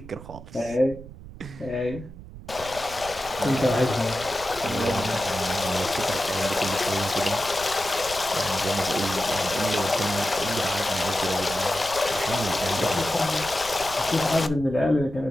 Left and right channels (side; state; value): right; noise; rumble, 15 dB below the sound